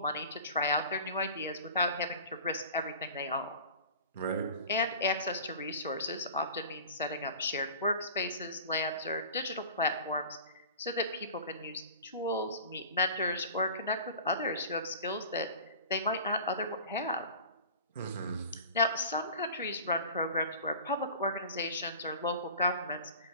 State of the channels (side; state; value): both; inverted; correlation -0.39